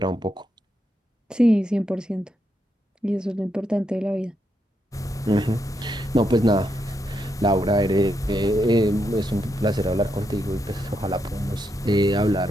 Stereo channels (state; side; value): normal; both; correlation 0.81